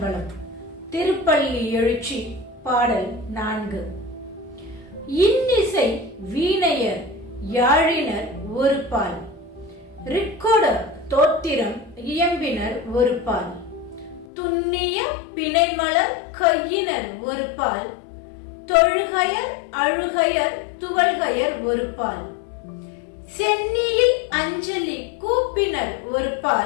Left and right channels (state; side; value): drops out; right; at 14.2 s